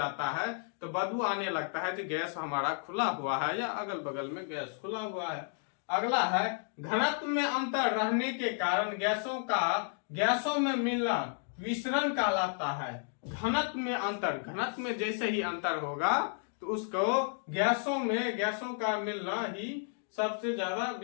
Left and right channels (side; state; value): right; silent; 55 dB below the other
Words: है तो बदबू आने लगता है कि गैस हमारा खुला हुआ है या अगल बगल में गैस खुला हुआ है। अगला है घनत्व में अंतर रहने के कारण गैसों में मिलना विसरण कहलाता है। घनत्व में अंतर, घनत्व में जैसे ही अंतर होगा तो उसको गैसों का मिलना ही सबसे ज्यादा